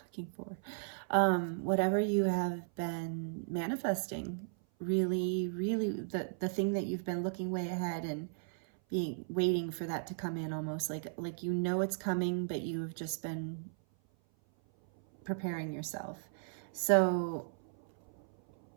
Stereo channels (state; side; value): silent; left; 54 dB below the other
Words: looking for. Whatever you have been manifesting, really, the thing that you've been looking way ahead and waiting for that to come in, almost like you know it's coming, but you've just been preparing yourself. So